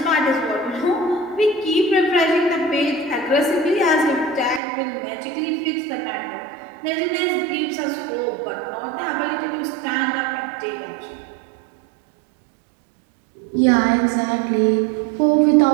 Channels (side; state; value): left; drops out; at 4.6 s